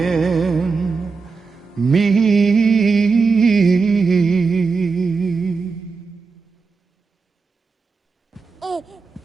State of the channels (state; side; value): quieter; left; 4.7 dB